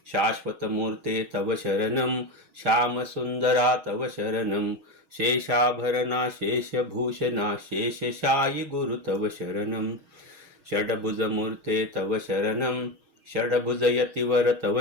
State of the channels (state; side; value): late; left; 6.3 ms